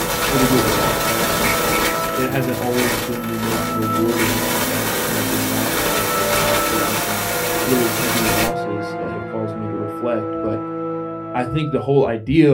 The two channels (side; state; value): both; identical; correlation 1.00